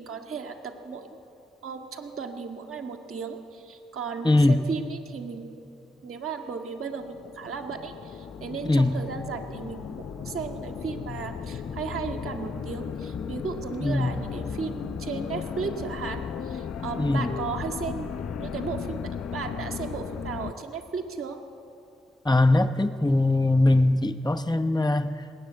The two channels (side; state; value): both; normal; correlation 0.84